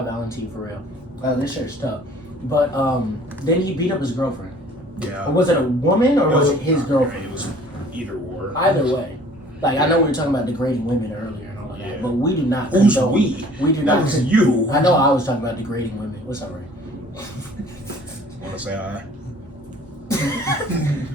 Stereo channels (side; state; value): both; normal; correlation 0.52